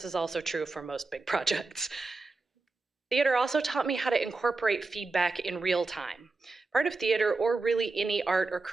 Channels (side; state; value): left; quieter; 3.6 dB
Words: is also true for most big projects. Theater also taught me how to incorporate feedback in real time. Part of theater, or really any art or